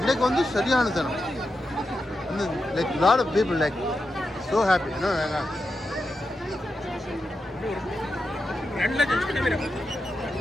வந்து சரியான சனம். Like lot of people like so happy.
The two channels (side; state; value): both; normal; correlation 0.88